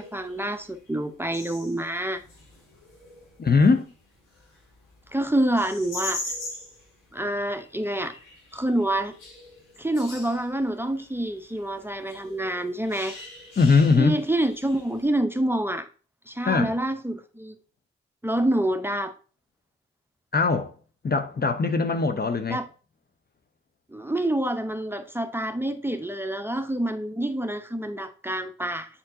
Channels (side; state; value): both; normal; correlation 0.73